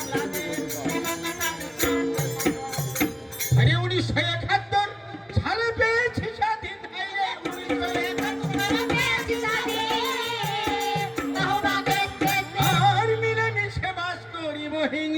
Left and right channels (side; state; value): both; identical; correlation 1.00